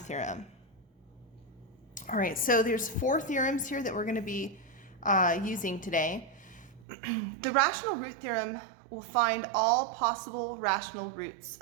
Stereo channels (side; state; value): left; drops out; at 6.9 s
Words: All right, so there's 4 theorems here that we're going to be using today. The rational root theorem will find all possible rational roots